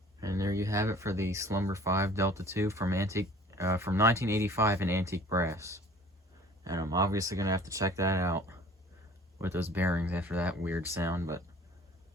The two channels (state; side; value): normal; both; correlation 0.49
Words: And there you have it for the Slumber 5 Delta II from 1985 in antique brass. And I'm obviously going to have to check that out with those bearings after that weird sound, but